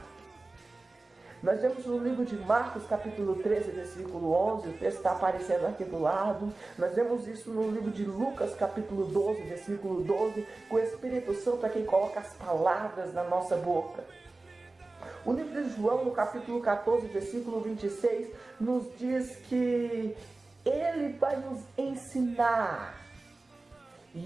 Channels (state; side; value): quieter; left; 3.2 dB